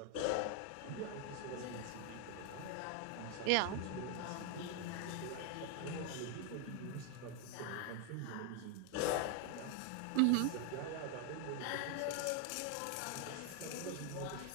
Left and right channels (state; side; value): different; both; correlation 0.01